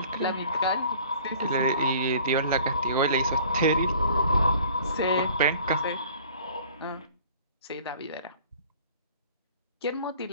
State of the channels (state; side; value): inverted; both; correlation -0.50